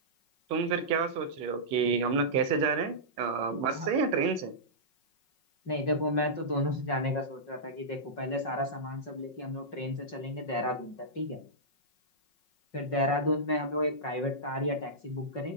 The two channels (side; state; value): right; late; 5.5 ms